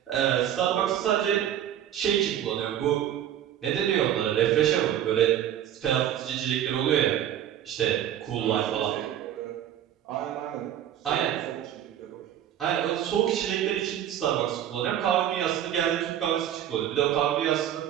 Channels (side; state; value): left; quieter; 10.8 dB